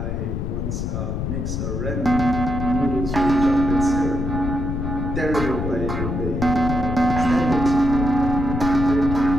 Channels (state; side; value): noise; left; rumble, 3 dB below the sound